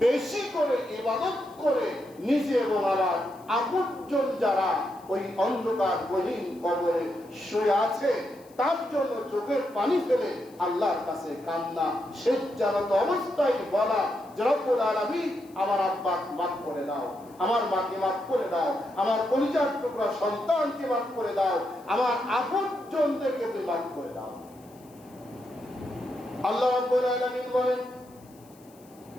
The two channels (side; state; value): left; noise; hiss, 28 dB below the sound